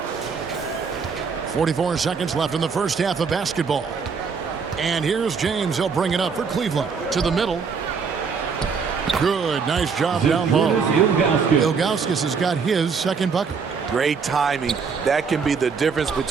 44 seconds left in the first half of basketball. And here's James. He'll bring it up for Cleveland. To the middle. Good. Nice job down low. Ilgauskas has got his 2nd bucket. Great timing. That can be the difference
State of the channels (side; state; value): left; quieter; 5.6 dB